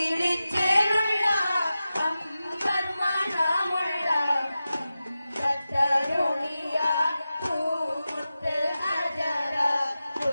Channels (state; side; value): inverted; both; correlation -0.93